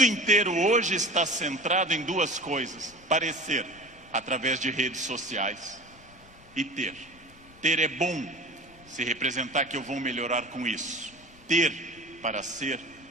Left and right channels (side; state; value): left; noise; rumble, 25 dB below the sound